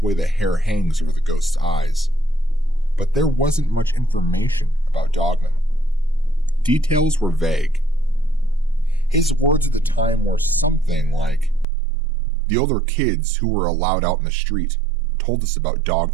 way the hair hangs over the ghost's eyes. But there wasn't much information about Dogman. Details were vague. His words at the time were something like, "The older kids who were allowed out in the street told us about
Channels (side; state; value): left; drops out; at 11.7 s